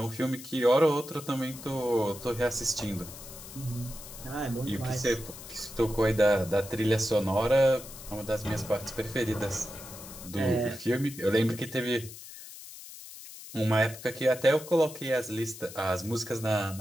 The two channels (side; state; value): left; noise; hiss, 14 dB below the sound